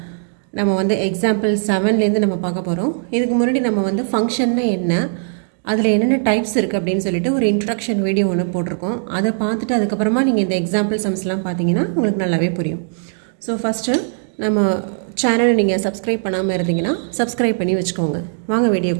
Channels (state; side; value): silent; left; digital silence